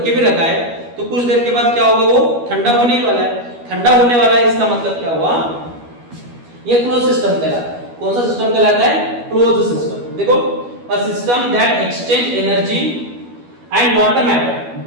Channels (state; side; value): late; left; 12 ms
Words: के भी रखा है, तो कुछ देर के बाद क्या होगा, वो ठंडा होने वाला है। ठंडा होने वाला है, इसका मतलब क्या हुआ? ये क्लोज सिस्टम कहलाता है। कौन सा सिस्टम कहलाता है? Closed system. देखो, a system that exchange energy and not a